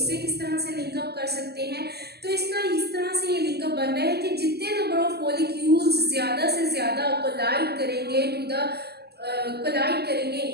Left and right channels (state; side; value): late; left; 0.47 ms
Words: किस तरह से लिंकअप कर सकते हैं। तो इसका इस तरह से ये लिंकअप बन रहा है कि जितने नंबर ऑफ मॉलिक्यूल्स ज़्यादा से ज़्यादा कोलाइड करेंगे इन